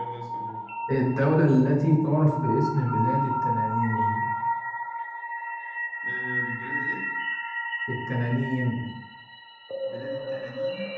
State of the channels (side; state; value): both; identical; correlation 1.00